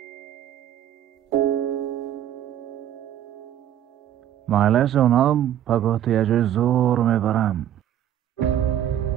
معلش اونم پگاه یه جای زور میبرم.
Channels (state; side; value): quieter; left; 11.1 dB